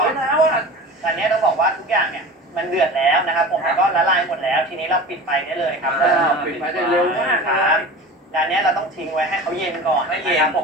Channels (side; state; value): both; normal; correlation 0.35